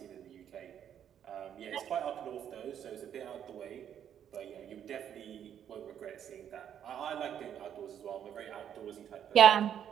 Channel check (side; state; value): left; quieter; 9.4 dB